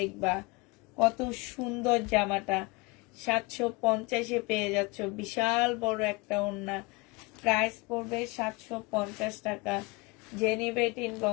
কত সুন্দর জামাটা, 750-এ পেয়ে যাচ্ছ। বিশাল বড় একটা ওড়না। প্রাইস পড়বে 750 টাকা। যে নিবে এটা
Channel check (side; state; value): right; quieter; 26.1 dB